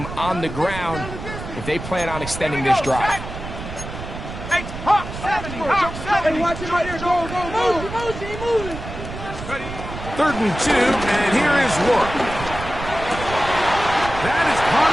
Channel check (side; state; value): right; noise; rumble, 9 dB below the sound